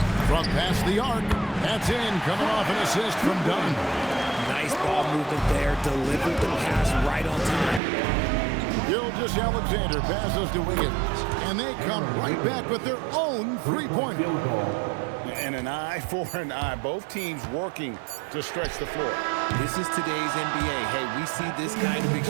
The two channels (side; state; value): left; drops out; at 7.8 s